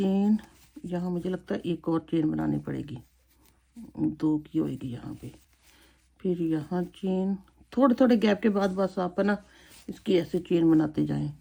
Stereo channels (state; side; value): identical; both; correlation 1.00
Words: यहाँ मुझे लगता है एक और चेन बनानी पड़ेगी, 2 की होएगी यहाँ पे। फिर यहाँ चेन, थोड़े थोड़े गैप के बाद बस आप है ना इसकी ऐसे चेन बनाते जाएं।